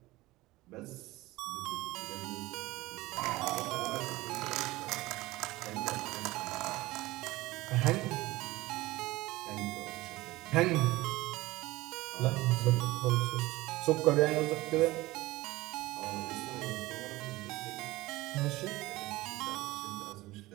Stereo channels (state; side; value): quieter; left; 19.1 dB